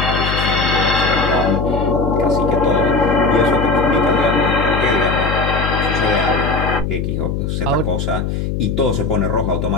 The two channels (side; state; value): left; noise; hum, 2 dB below the sound